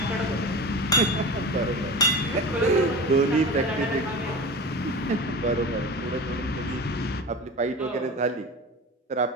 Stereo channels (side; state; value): both; normal; correlation 0.31